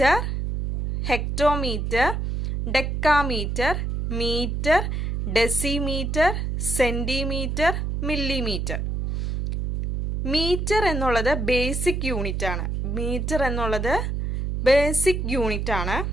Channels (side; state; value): right; noise; hum, 2 dB below the sound